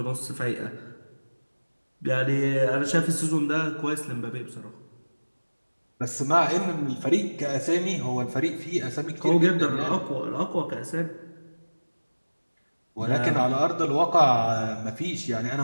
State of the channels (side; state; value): both; inverted; correlation -1.00